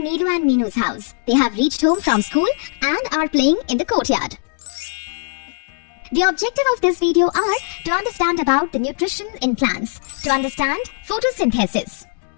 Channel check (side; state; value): right; silent; digital silence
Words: and Meenu's house. They have reached home from school and are playing in the courtyard. The objective of this video are to understand about the nutrition in plants, to understand photosynthesis.